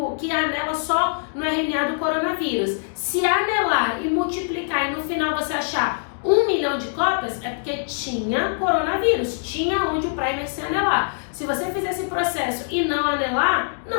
que anela só no RNA do coronavírus. Se anelar e multiplicar e no final você achar 1 milhão de cópias, é porque tinha coronavírus, tinha onde o primer se anelar. Se você fizer esse processo e não anelar,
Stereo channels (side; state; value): right; silent; digital silence